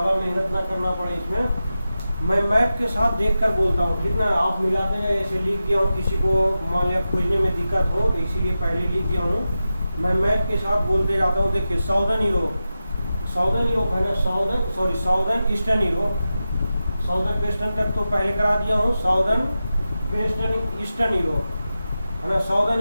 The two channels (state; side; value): inverted; both; correlation -0.93